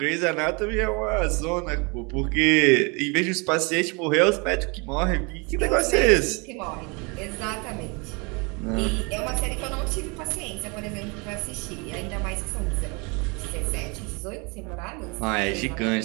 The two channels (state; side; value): quieter; left; 30.2 dB